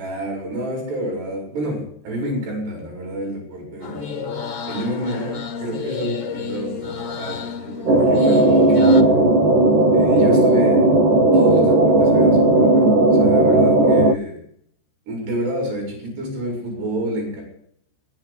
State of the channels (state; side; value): late; left; 13 ms